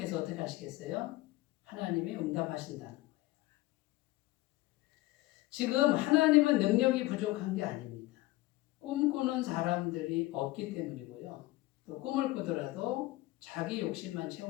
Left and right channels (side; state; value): right; quieter; 18.5 dB